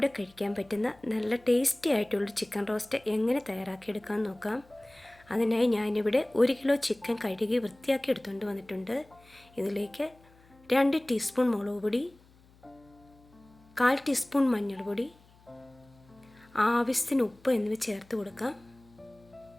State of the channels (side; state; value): left; noise; hum, 28 dB below the sound